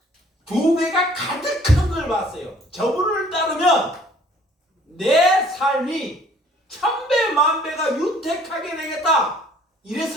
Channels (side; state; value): both; normal; correlation 0.56